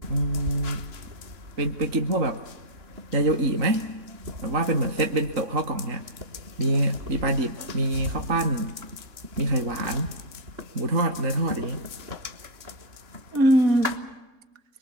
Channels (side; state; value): left; late; 3.6 ms